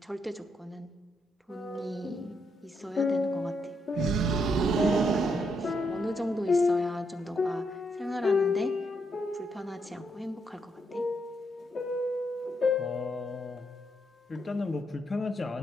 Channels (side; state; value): both; normal; correlation 0.78